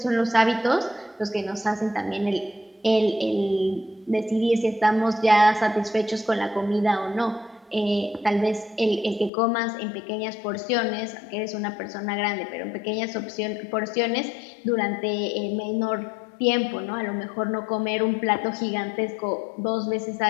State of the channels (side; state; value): right; drops out; at 9.3 s